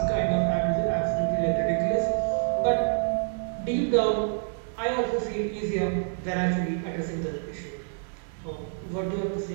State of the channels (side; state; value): left; silent; digital silence